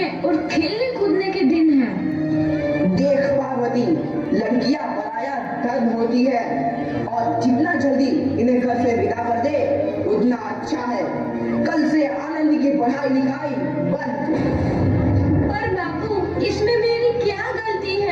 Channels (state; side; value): identical; both; correlation 1.00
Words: और खेलने कूदने के दिन हैं। देख पार्वती, लड़कियां पराया धर्म होती है और जितना जल्दी इन्हें घर से विदा कर दे उतना अच्छा है। कल से आनंद की पढ़ाई लिखाई बंद। पर बापू, इसमें मेरी क्या गलती